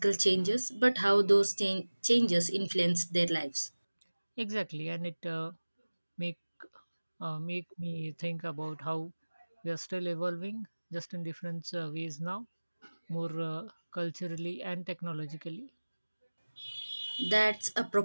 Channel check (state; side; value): inverted; both; correlation -1.00